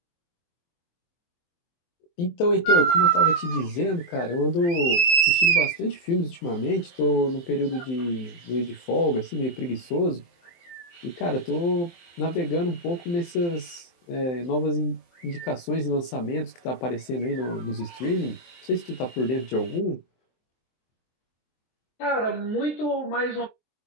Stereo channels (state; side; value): late; right; 23 ms